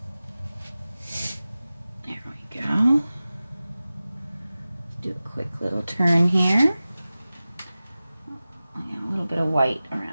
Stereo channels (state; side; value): inverted; both; correlation -0.96